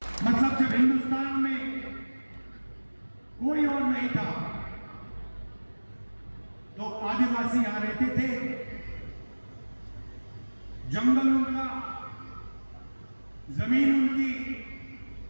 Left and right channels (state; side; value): inverted; both; correlation -1.00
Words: मतलब जब हिंदुस्तान में कोई और नहीं था तो आदिवासी यहां रहते थे, जंगल उनका, जमीन उनकी,